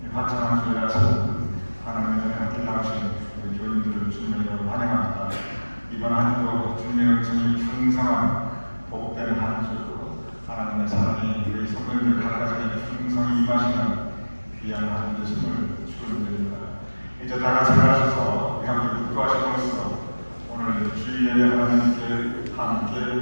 화창한 주일 아침 하나님의 전에 함께 나오신 우리 교인들을 주님으로 환영합니다. 이번 한 주도 주님의 은총이 풍성한 복된 한 주, 하나님의 사랑이 우리 성도님들 각각에게 풍성히 임하시는 귀한 한 주심을 축원드립니다. 이제 다 같이 나가셔서 우리 함께 묵도하심으로써 오늘 주일 예배 하나님께 함께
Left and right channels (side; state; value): both; inverted; correlation -1.00